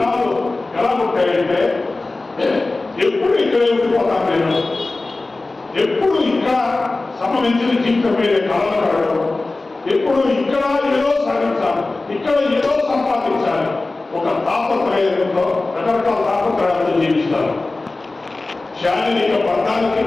ఎలా ఉంటాయంటే ఎప్పుడు ఇక్కడే ఉండిపోతాను నేను, ఎప్పుడు ఇక్కడ సంబంధించిన జీవితం మీద కళలు కడగడం, ఎప్పుడు ఇక్కడ ఏదో సాధించాలి, ఇక్కడ ఏదో సంపాదించాలి, ఒక తాపత్రయంతో రకరకాల తాపత్రయాలతో జీవిస్తారు. శారీరక బంధానికి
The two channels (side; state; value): right; quieter; 3.3 dB